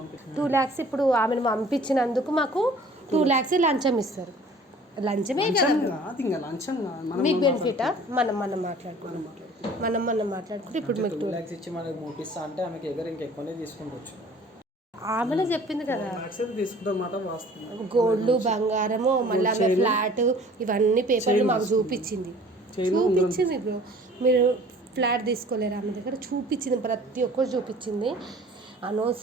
పంపించే 2 lakhs ఇప్పుడు ఆమెను పంపించినందుకు మాకు 2 lakhs లంచం ఇస్తారు. లంచమే కదా మీకు బెనిఫిటా? మనం మాట్లాడుకుంటే ఇప్పుడు మీకు 2 lakhs ఇచ్చి మనకు పంపిస్తా అంటే ఆమెకి ఎగర ఇంకెక్కువనే తీసుకుంటవచ్చు. ఆమెనే చెప్పింది కదా తీసుకుంటామాట వాస్తవం. గోల్డ్ బంగారము మళ్ళీ ఆమె ఫ్లాట్ ఇవన్నీ పేపర్లు మాకు చూపించింది బ్రో. మీరు ఫ్లాట్ తీసుకోలేరు ఆమె దగ్గర చూపించింది, ప్రతి ఒక్కరు చూపించింది.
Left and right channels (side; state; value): both; normal; correlation 0.50